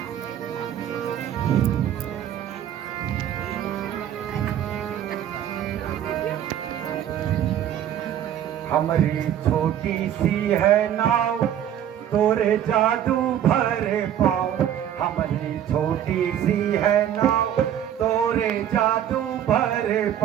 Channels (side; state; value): left; quieter; 10.4 dB